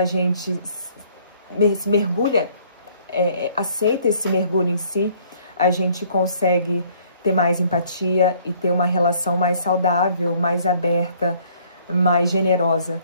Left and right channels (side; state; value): both; inverted; correlation -0.60